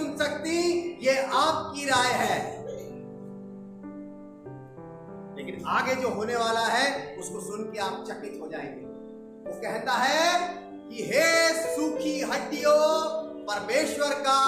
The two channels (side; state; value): both; identical; correlation 1.00